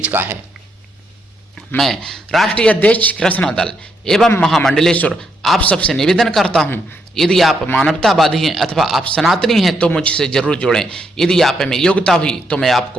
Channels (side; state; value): both; normal; correlation 0.78